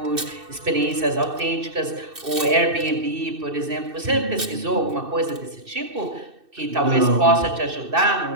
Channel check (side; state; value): left; late; 2.6 ms